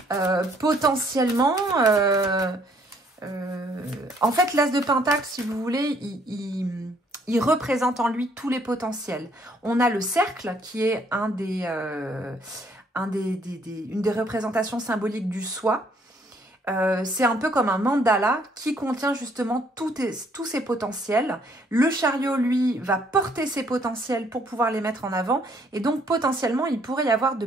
potentiellement... en fait, l'as de pentacle, si vous voulez, il représente en lui tous les potentiels. On a le cercle qui est une des représentations symboliques du soi. C'est un peu comme un mandala qui contient justement tous ces potentiels. Le chariot, lui, va porter ses potentiels pour pouvoir les mettre en avant. Et donc, potentiellement, il pourrait y avoir de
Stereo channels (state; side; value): normal; both; correlation 0.65